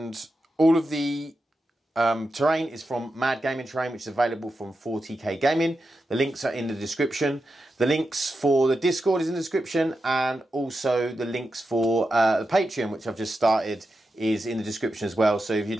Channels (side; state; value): both; normal; correlation 0.89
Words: all of the terrain is from Mad Gaming Terrain, which is available from 40k Gaming. The links are in the description. The links for the Discord is in the description, and also the links for the Patreon, which I've just started, is in the description as well. So if you'd